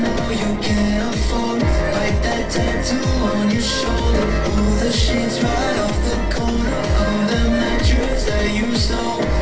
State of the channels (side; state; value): both; identical; correlation 1.00